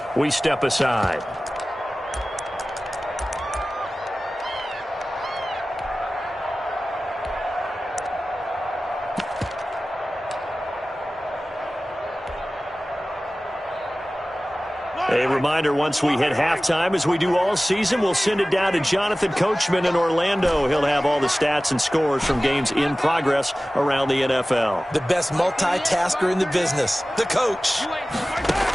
we step aside. A reminder, once we hit halftime, as we do all season, we'll send it down to Jonathan Coachman in Orlando. He'll have all the stats and scores from games in progress around the NFL. The best multitasker in the business, the coach.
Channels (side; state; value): both; normal; correlation 0.97